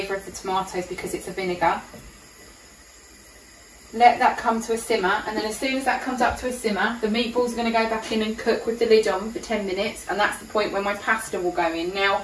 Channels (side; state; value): both; identical; correlation 1.00